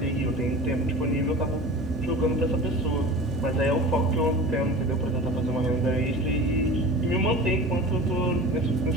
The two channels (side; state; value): both; normal; correlation 0.35